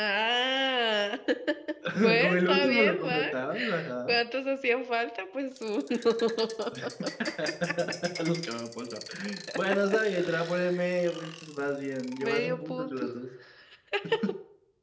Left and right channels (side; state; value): both; identical; correlation 1.00